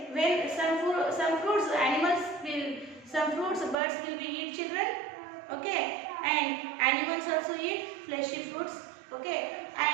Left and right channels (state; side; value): drops out; left; at 3.8 s